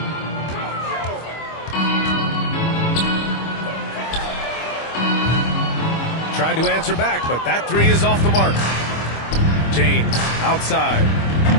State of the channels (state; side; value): late; right; 25 ms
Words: Tried to answer back, but that 3 is off the mark. James outside.